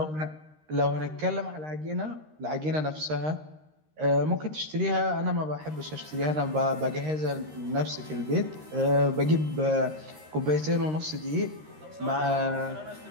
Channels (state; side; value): late; left; 13 ms